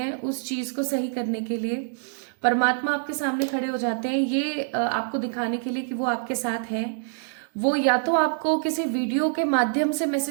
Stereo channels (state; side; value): silent; left; digital silence